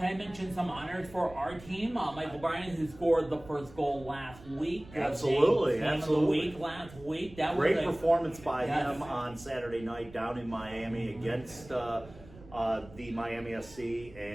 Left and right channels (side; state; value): right; noise; rumble, 19 dB below the sound